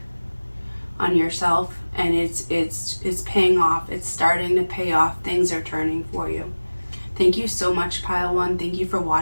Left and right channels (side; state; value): both; inverted; correlation -1.00